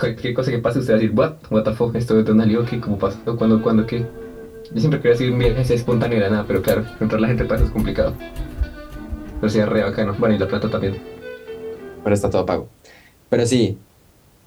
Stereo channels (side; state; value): both; identical; correlation 1.00